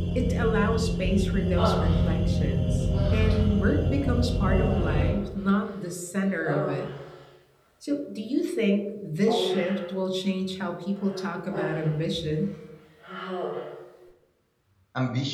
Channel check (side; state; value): both; identical; correlation 1.00